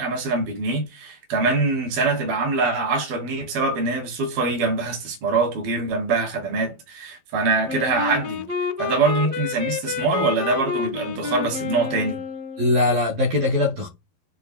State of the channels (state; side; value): late; left; 12 ms